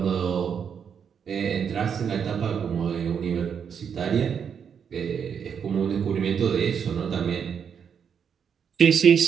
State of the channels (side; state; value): left; quieter; 7.3 dB